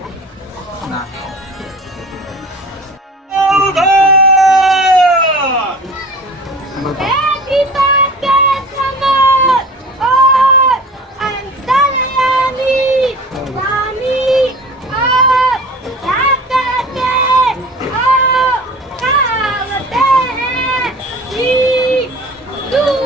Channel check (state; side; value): normal; both; correlation 0.41